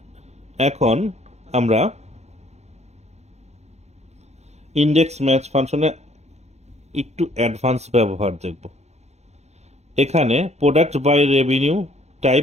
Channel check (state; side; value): late; left; 0.32 ms